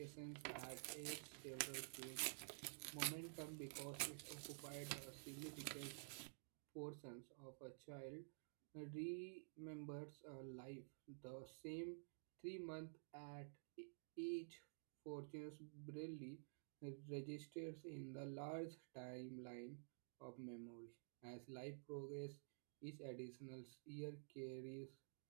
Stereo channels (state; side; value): silent; left; digital silence